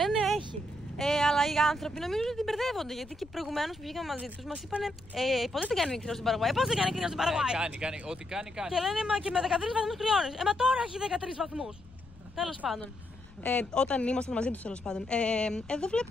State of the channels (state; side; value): noise; left; rumble, 22 dB below the sound